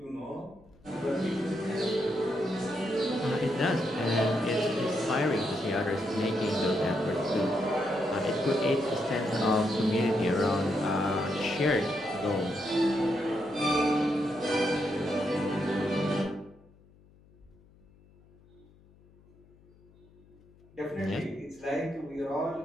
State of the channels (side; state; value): left; noise; hum, 28 dB below the sound